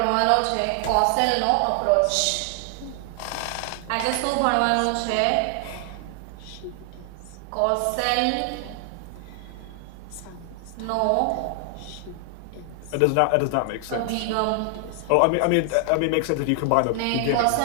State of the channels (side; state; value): both; different; correlation 0.00